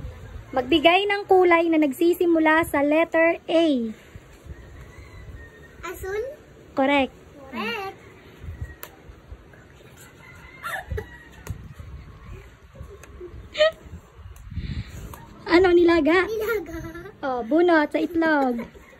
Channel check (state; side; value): identical; both; correlation 1.00